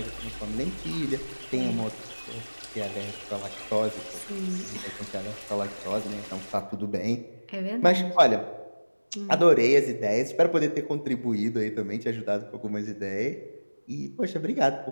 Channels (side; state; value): both; inverted; correlation -1.00